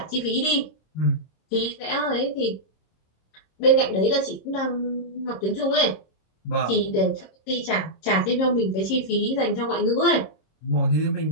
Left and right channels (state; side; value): late; right; 26 ms